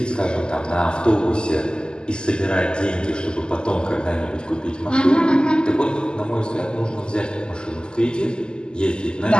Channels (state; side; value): late; right; 0.047 ms